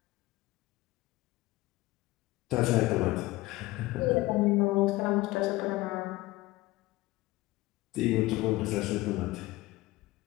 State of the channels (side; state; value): right; quieter; 19.1 dB